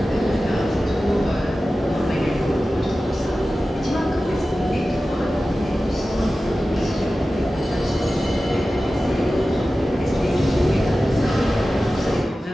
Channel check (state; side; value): normal; both; correlation 0.95